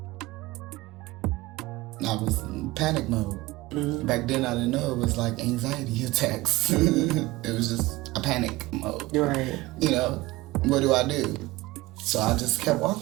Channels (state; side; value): quieter; left; 19.8 dB